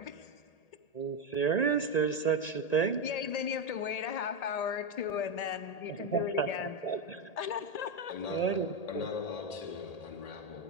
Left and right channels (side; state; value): right; late; 1.8 ms